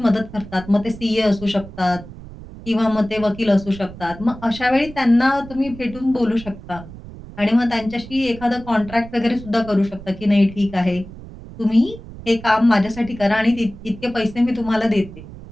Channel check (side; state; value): right; noise; rumble, 15 dB below the sound